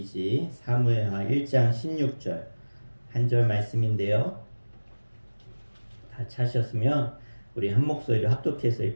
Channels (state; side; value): inverted; both; correlation -1.00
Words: 사무엘하 1장 16절 한 절 말씀인데요. 다 찾으셨으면 우리 한 목소리로 합독해서